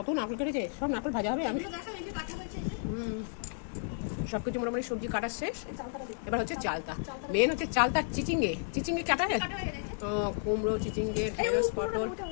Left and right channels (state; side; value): silent; right; digital silence